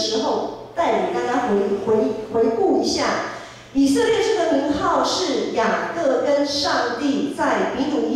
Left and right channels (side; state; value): both; identical; correlation 1.00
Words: 候，带领大家回顾一下，以色列这个名号是雅各跟上帝在比努